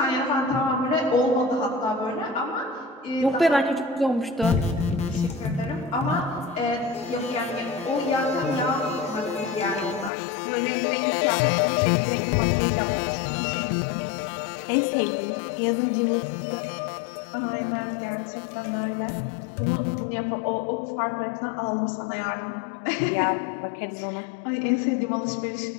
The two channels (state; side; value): drops out; right; at 10.1 s